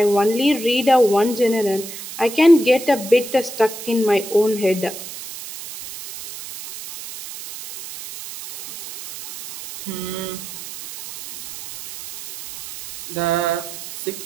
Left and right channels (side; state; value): right; noise; hiss, 11 dB below the sound